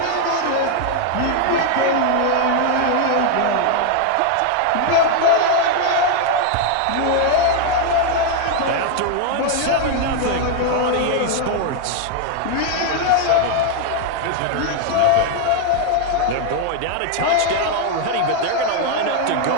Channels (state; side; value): different; both; correlation 0.00